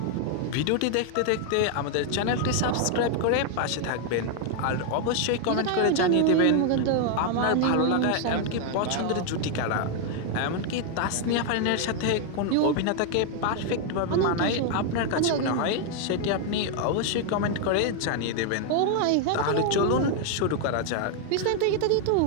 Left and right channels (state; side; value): different; both; correlation 0.00